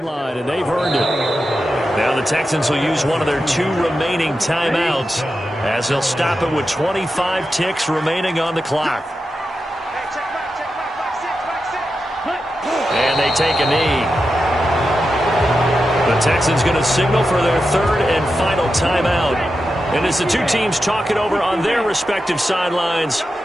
and they've earned it. Now the Texans will use one of their 2 remaining timeouts, as they'll stop it with 25 ticks remaining on the clock. And they take a knee. The Texans going to signal for their 3rd and final timeout. And as the 2 teams talk it over on their respective sidelines,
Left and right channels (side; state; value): both; normal; correlation 0.89